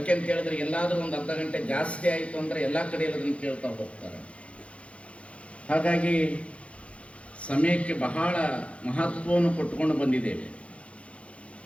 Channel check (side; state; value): right; late; 0.062 ms